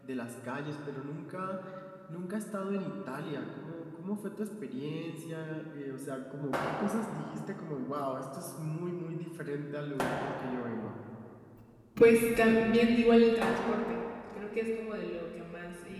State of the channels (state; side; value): identical; both; correlation 1.00